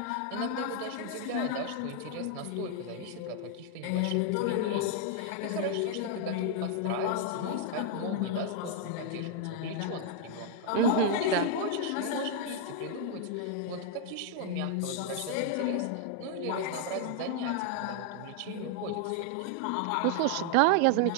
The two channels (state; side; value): different; both; correlation 0.00